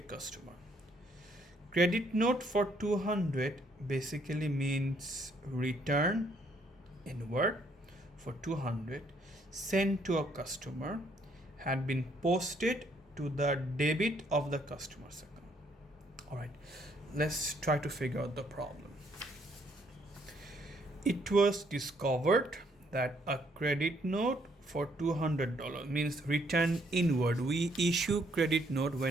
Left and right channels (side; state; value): both; normal; correlation 0.69